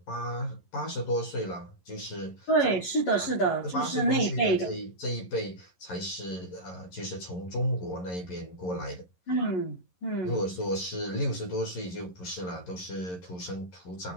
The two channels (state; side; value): late; right; 11 ms